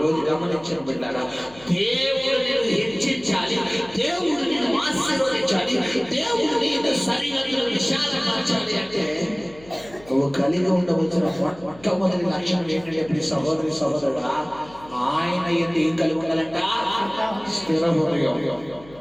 గమనించిన బిడ్డలారా, దేవుడు నేను హెచ్చించాలి, దేవుడు నేను ఆశీర్వదించాలి, దేవుడు నేను సరిహద్దులు విశాలపరచాలి అంటే నువ్వు కలిగి ఉండవలసిన మొట్టమొదటి లక్షణం ఏంటంటే ఇప్పుడు సహోదరి సహోదరుడా, ఆయన ఏం కలిగి ఉండాలంట? స్థిర హృదయం,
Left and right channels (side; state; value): left; noise; hum, 23 dB below the sound